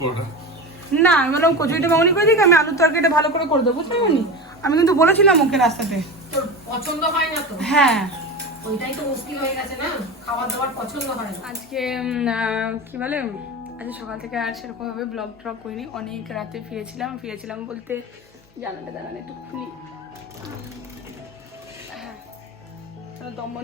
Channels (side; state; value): both; normal; correlation 0.26